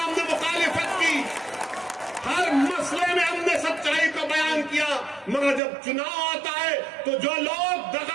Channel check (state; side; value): drops out; left; at 5.6 s